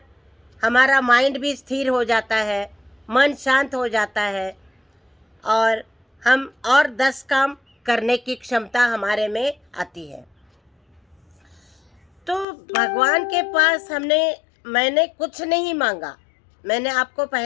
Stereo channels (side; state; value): right; drops out; at 12.5 s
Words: हमारा माइंड भी स्थिर हो जाता है, मन शांत हो जाता है और हम और 10 काम करने की क्षमता हमारे में आती है। तो भगवान के पास मैंने कुछ नहीं मांगा। मैंने आपको